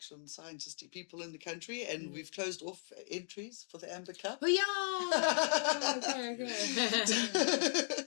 scientisty people in the country, and we've closed off entries for the Amber Cup. Oh yeah. Okay.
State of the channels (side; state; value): right; silent; digital silence